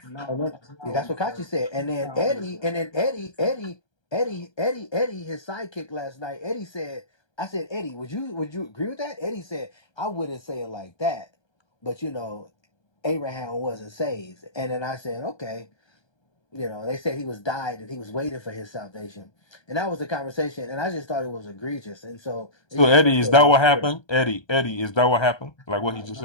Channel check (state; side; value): late; right; 1.3 ms